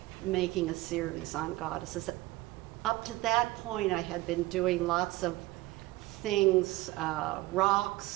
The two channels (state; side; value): quieter; left; 19.2 dB